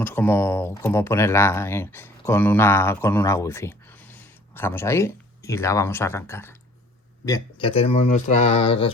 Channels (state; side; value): normal; both; correlation 0.53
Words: cómo ponerla con una Wi-Fi. Dejamos ahí y la vamos a arrancar. Bien, ya tenemos nuestra